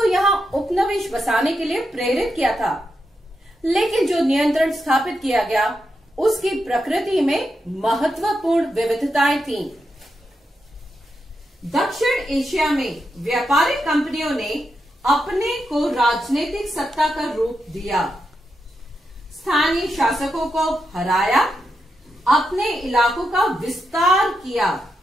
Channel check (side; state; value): both; normal; correlation 0.85